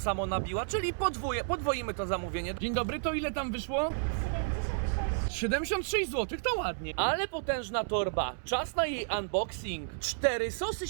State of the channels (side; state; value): left; silent; 57 dB below the other